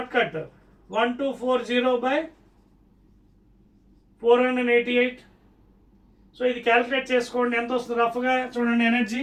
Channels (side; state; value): both; identical; correlation 1.00